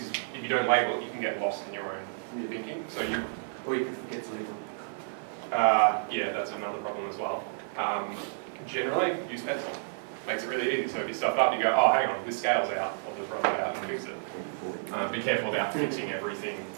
if you don't label it, you can get lost in your own thinking. So you, Or you can forget to label. yeah, that's another problem as well. Generally, use pencil. Makes it really easy. So if you stuff up, you go, oh, hang on, this scale's out. I'll just rub it out and fix it. Be careful about fixing everything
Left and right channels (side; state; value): left; silent; 57 dB below the other